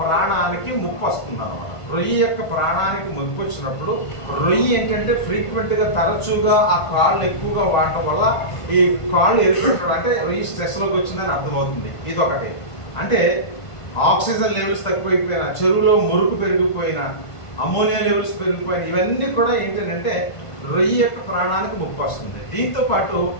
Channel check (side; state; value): right; late; 1.5 ms